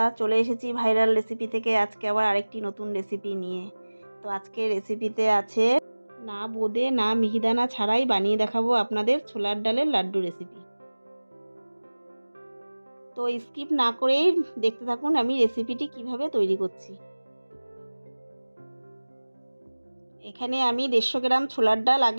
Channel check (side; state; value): both; inverted; correlation -1.00